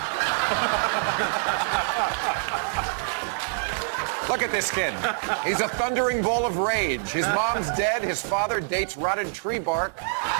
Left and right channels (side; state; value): left; silent; digital silence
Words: Look at this kid. He's a thundering ball of rage. His mom's dead. His father dates rotted tree bark.